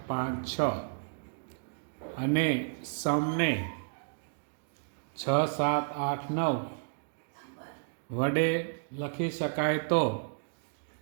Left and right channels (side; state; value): left; silent; digital silence